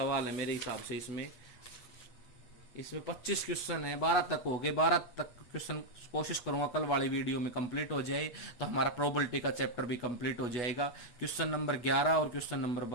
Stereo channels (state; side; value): late; right; 8.2 ms